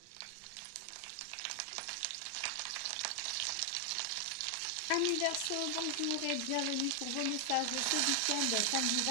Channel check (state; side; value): different; both; correlation 0.00